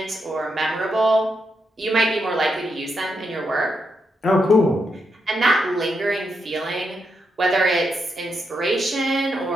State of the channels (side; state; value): both; normal; correlation 0.82